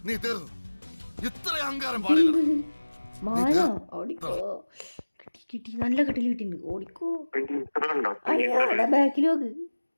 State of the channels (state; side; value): inverted; both; correlation -1.00